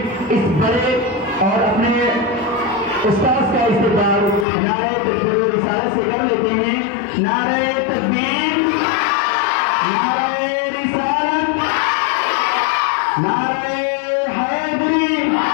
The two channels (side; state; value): right; drops out; at 4.5 s